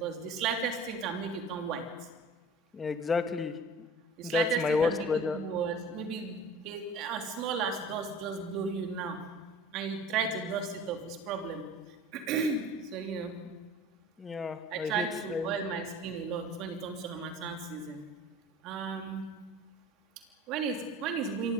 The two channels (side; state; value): both; normal; correlation 0.43